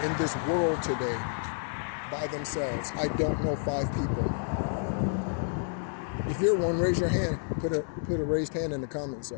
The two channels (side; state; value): right; silent; 58 dB below the other